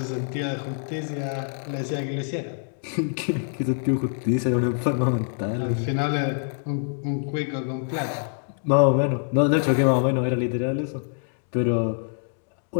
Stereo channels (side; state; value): right; silent; 61 dB below the other